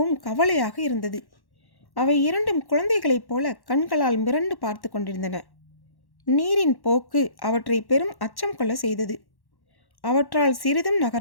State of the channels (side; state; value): right; late; 1.1 ms